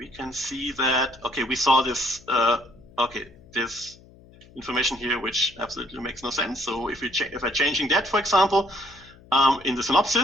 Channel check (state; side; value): noise; left; hum, 24 dB below the sound